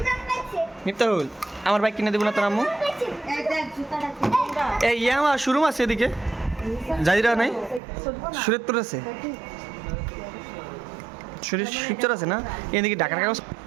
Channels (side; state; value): left; drops out; at 7.8 s